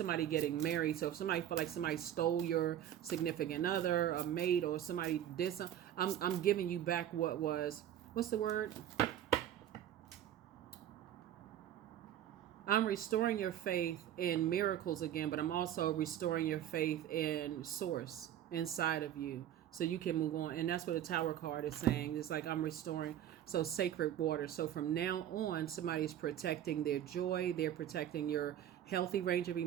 getting married. So if somebody felt like somebody stole your significant other, a mate, or somebody did something, I'm giving you back what was, what's the word? I'm restoring your faith in miracles again, but I'm also restoring your faith in Source inside of you so you can move on. And that's what the Tower card is saying. It's like I'm restoring. So sacred water. So from now on, somebody's protecting their joy. They're protecting your healthy range of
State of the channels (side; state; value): left; quieter; 11.1 dB